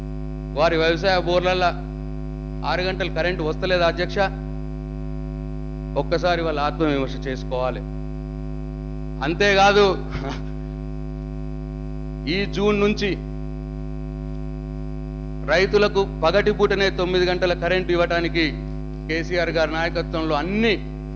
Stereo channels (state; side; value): identical; both; correlation 1.00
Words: వారి వ్యవసాయ బోర్లల్లో 6 గంటలు కరెంటు వస్తలేదు అధ్యక్ష? ఒక్కసారి వాళ్ళ ఆత్మవిమర్శ చేసుకోవాలి. అంతేకాదు, ఈ జూన్ నుంచి రైతులకు పగటిపూటనే 9 గంటల కరెంటు ఇవ్వడానికి కేసీఆర్ గారి నాయకత్వంలో అన్ని